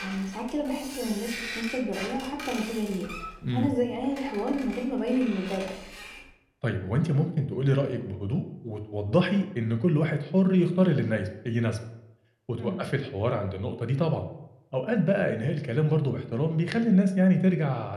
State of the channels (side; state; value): both; identical; correlation 1.00